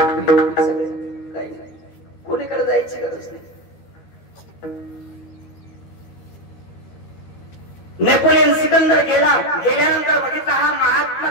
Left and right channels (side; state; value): right; late; 13 ms